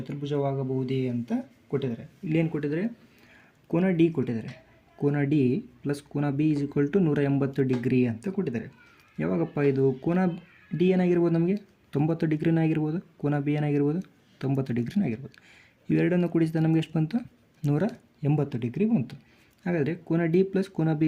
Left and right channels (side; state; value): both; identical; correlation 1.00